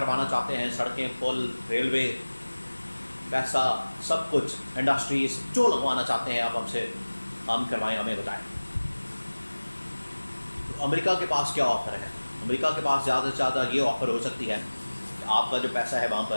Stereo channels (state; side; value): inverted; both; correlation -1.00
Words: چاہتے ہیں، سڑکیں، پل، ریلوے، پیسہ، سب کچھ، انڈسٹریز جو لگوانا چاہتے ہیں آپ ہم سے کام کروائیں، ہمیں بتائیں۔ تو امریکہ کے پاس کیا آفر ہے؟ امریکہ کے پاس زیادہ سے زیادہ یہ آفر ہو سکتی ہے کہ آپ کا جو پیسہ ہے وہاں